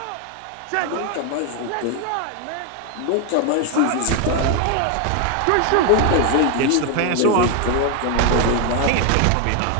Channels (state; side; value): different; both; correlation 0.01